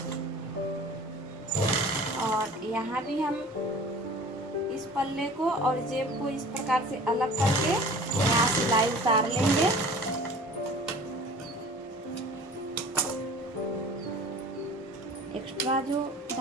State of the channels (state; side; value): normal; both; correlation 0.44